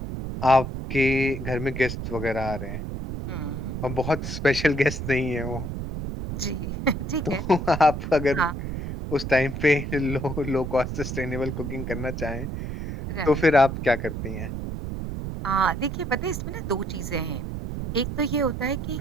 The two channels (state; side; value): noise; right; rumble, 5 dB below the sound